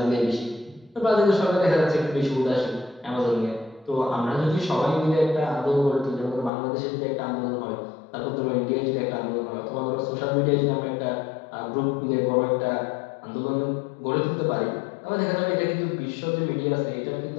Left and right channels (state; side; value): drops out; right; at 6.5 s